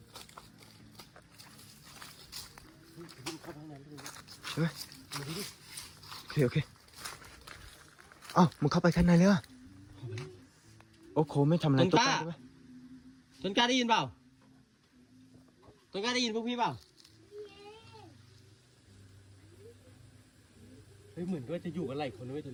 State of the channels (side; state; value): both; identical; correlation 1.00